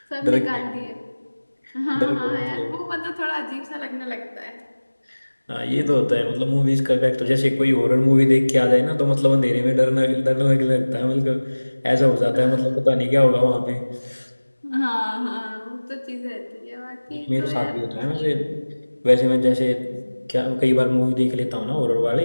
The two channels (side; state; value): both; inverted; correlation -1.00